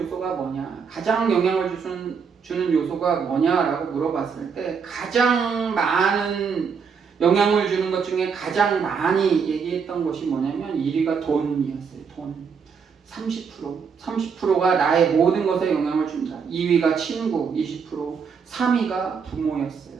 뭐냐, 가장 영향을 주는 요소가 뭐냐라고 물어봤을 때 가장 많은 영향을 주는 것 중에 가장 많이 얘기했던 것이 뭐냐면 1위가 돈이었어요. 돈 30%가 나의 모든 것에 영향을 준다. 2위가 친구 20%, 3위가 부모였어요.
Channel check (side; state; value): left; quieter; 6.1 dB